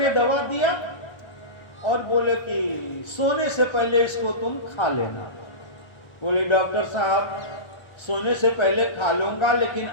दवा दिया और बोले कि सोने से पहले इसको तुम खा लेना। बोले डॉक्टर साहब सोने से पहले खा लूंगा लेकिन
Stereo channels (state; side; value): late; right; 1.3 ms